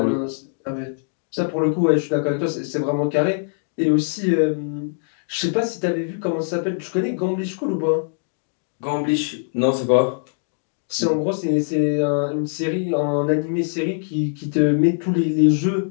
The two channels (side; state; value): right; silent; digital silence